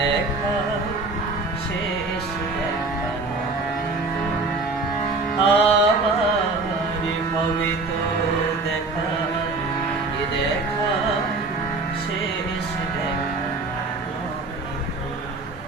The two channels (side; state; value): left; quieter; 3.5 dB